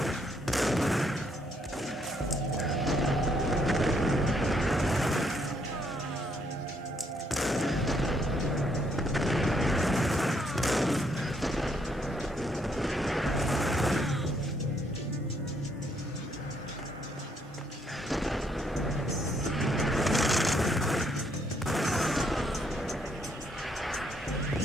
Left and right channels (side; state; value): both; normal; correlation 0.72